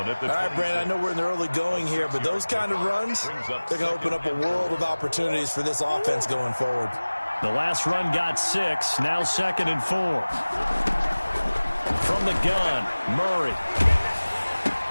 at the 26. All right, Brandon, I know we're in the early going here, but those kind of runs, they're going to open up a world of opportunities for this offense going forward. The last run got 6, now 2nd and 4. From the gun, Murray.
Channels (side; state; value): both; inverted; correlation -1.00